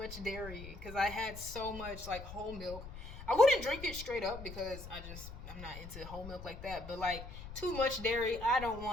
dairy because I had so much like whole milk. I wouldn't drink it straight up because I'm not into whole milk like that. But like, too much dairy, I don't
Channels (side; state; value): left; noise; rumble, 12 dB below the sound